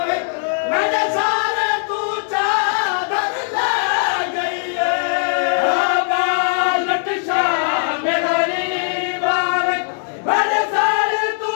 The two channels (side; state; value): right; silent; digital silence